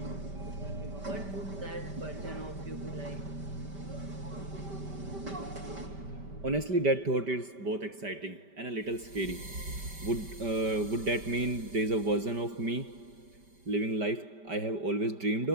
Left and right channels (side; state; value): left; late; 5.1 ms